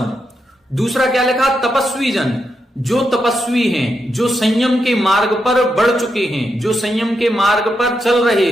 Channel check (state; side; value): normal; both; correlation 0.84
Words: दूसरा क्या लिखा? तपस्वी जन, जो तपस्वी हैं, जो संयम के मार्ग पर बढ़ चुके हैं, जो संयम के मार्ग पर चल रहे